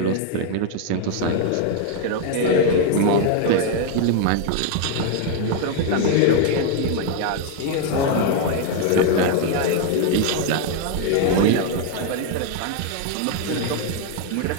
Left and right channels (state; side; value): different; both; correlation 0.00